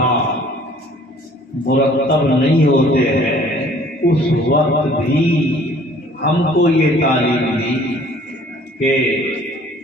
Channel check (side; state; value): both; normal; correlation 0.54